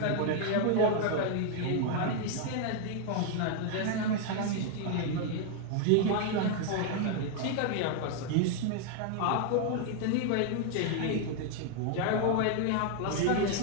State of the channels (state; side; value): different; both; correlation 0.00